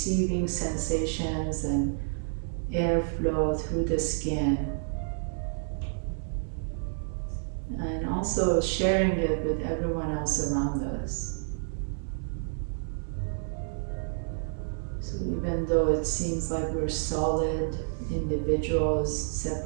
sensations and airflow through the skin, and also sharing it with everyone else around us. So even though it seems like we're solid individuals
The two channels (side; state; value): left; silent; 58 dB below the other